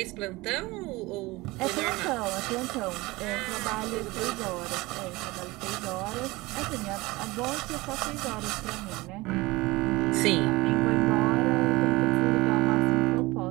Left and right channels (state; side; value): quieter; left; 21.3 dB